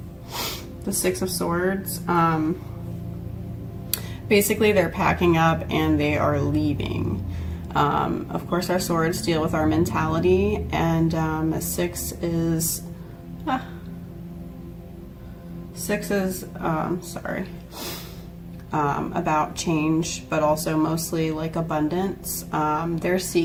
Six of Swords. Basically they're packing up and they are leaving. Of course our swords deal with our mentality, and six is about change, but also mostly like abundance. They're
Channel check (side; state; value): both; identical; correlation 1.00